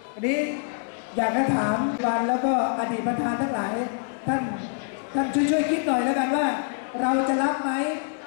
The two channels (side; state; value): right; silent; digital silence